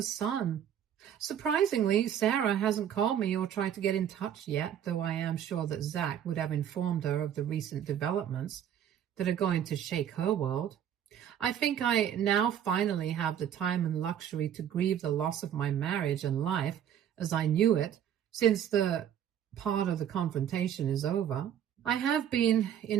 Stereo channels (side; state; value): left; quieter; 9.7 dB